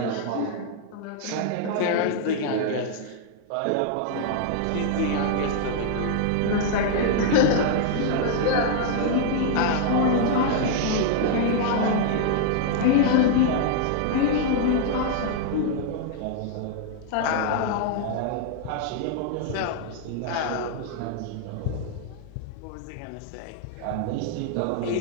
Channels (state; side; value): different; both; correlation -0.01